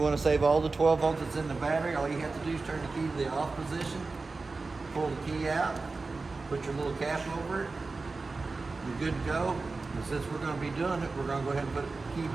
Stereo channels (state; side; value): quieter; left; 3.8 dB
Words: want to save all the 12 volts that's in the battery, all you have to do is turn the key to the off position, pull the key out, put your little cap over it, you're good to go. And since we're going to be doing it, we're going to go ahead and put the key